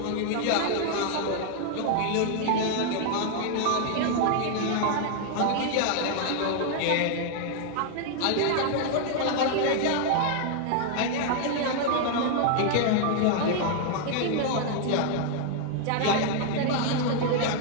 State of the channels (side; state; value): both; different; correlation 0.00